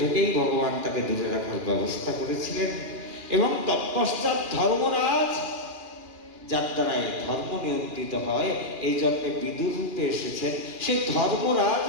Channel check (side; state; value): left; late; 2.4 ms